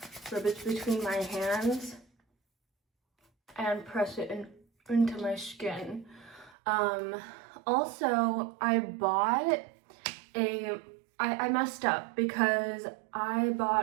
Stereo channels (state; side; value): drops out; left; at 6.6 s